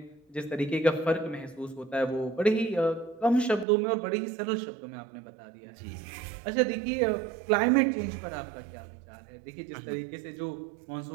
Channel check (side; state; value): left; drops out; at 3.7 s